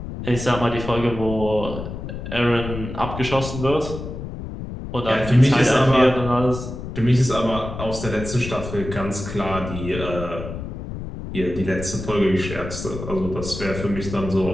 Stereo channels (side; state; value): left; noise; rumble, 8 dB below the sound